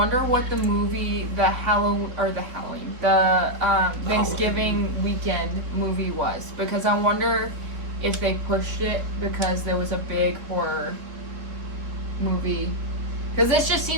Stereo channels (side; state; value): left; late; 3.7 ms